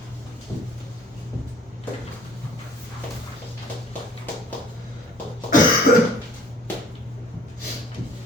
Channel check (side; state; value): both; normal; correlation 0.53